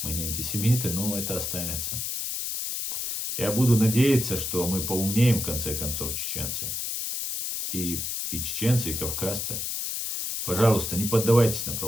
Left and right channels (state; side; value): noise; left; hiss, 3 dB below the sound